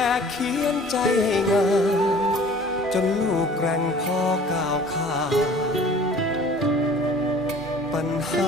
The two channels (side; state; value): both; normal; correlation 0.48